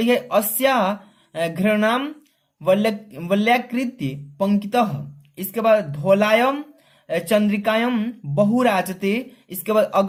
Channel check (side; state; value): both; identical; correlation 1.00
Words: अस्या घृणाम वल्याकृत्य पंक्तितः, इसके बाद धौलायम चंद्रिकायम बहुराजते, इसके बाद